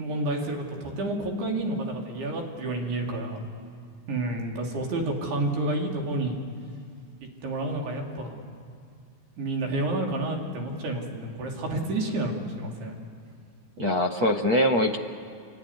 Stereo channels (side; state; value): left; late; 9.7 ms